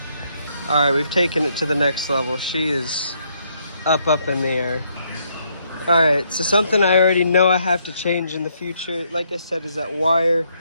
All right, we've taken it to the next level. She is up in the air. All right, so something I already know I have to change in the future, like I said, is that wire.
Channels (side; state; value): both; inverted; correlation -0.73